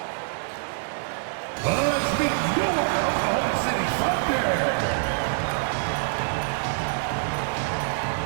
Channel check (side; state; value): left; silent; 61 dB below the other